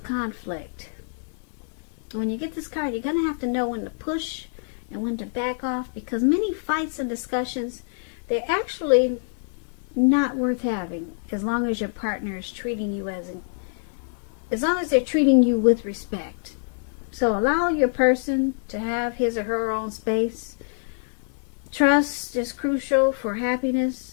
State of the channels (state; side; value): silent; right; digital silence